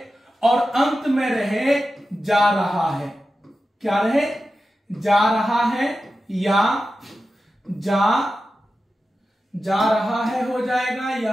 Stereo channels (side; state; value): both; normal; correlation 0.92